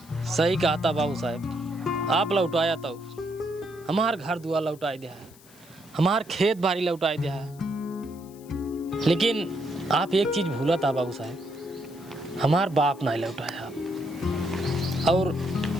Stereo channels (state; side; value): noise; left; hiss, 24 dB below the sound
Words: सही कहा था बाबू साहब, आप लौटाया तो हमार घर दुआर लौटाई दिया है, हमार खेत बाड़ी लौटाई दिया है। लेकिन आप एक चीज भूला था बाबू साहब, हमार बाप नहीं लौटाया आप, और